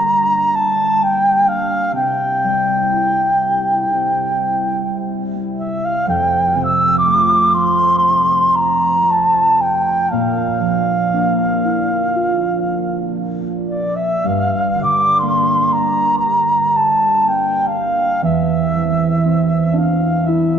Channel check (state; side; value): normal; both; correlation 0.71